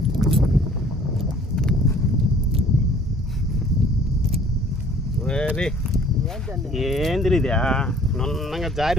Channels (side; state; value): both; normal; correlation 0.54